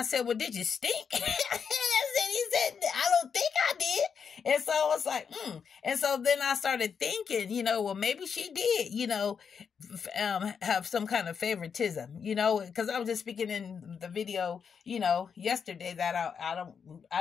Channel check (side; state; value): right; quieter; 6.6 dB